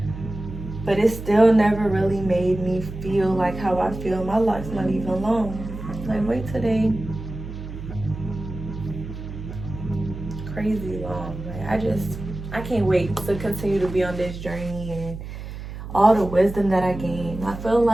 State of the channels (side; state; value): right; noise; hum, 10 dB below the sound